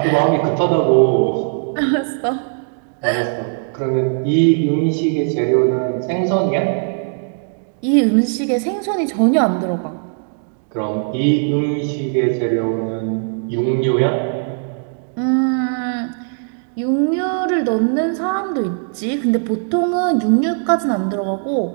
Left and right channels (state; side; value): silent; left; digital silence